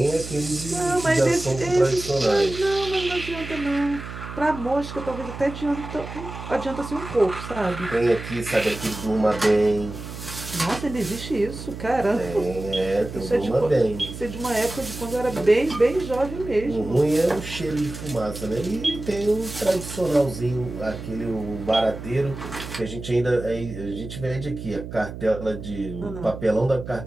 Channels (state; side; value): noise; right; hum, 10 dB below the sound